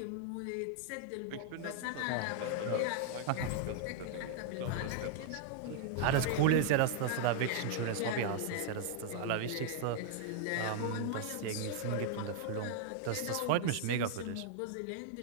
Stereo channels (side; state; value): both; different; correlation -0.01